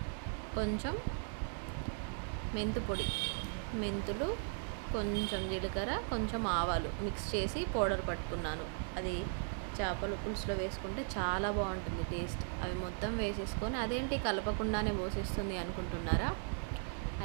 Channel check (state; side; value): silent; left; 53 dB below the other